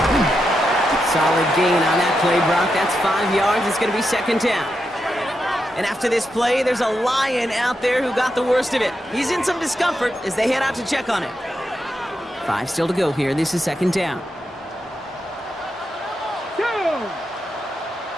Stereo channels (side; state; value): both; normal; correlation 0.86